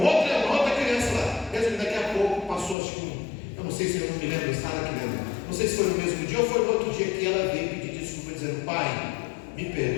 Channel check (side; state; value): right; drops out; at 2.8 s